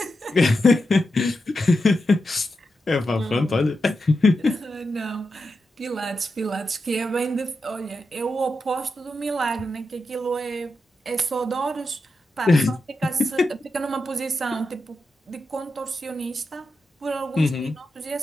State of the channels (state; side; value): normal; both; correlation 0.88